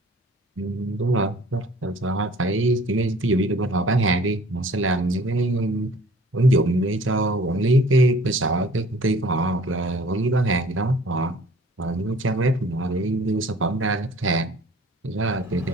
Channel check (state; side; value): normal; both; correlation 0.51